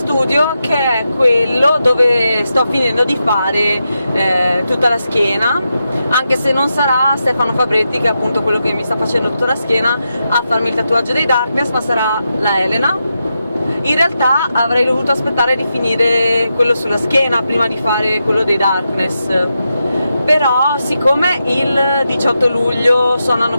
che è quello dove sto finendo di fare tutta la schiena, anche se non sarà Stefano Fabretti, che è appunto quello che mi sta facendo tutta la schiena, a farmi il tatuaggio dei Darkness, ma sarà la Elena. In realtà avrei dovuto aspettare di finire quello sulla schiena prima di fare quello dei Darkness, però siccome il 18 luglio suonano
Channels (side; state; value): both; inverted; correlation -0.87